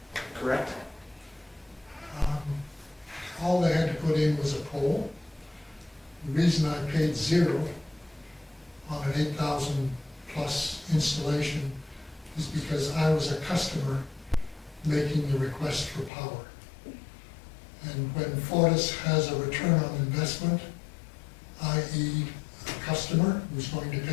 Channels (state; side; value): drops out; right; at 16.1 s